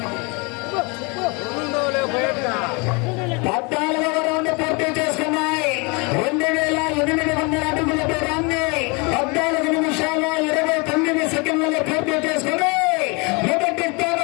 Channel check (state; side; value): quieter; right; 30.2 dB